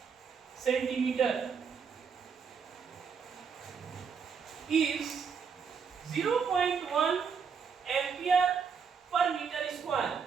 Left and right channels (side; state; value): left; quieter; 6.2 dB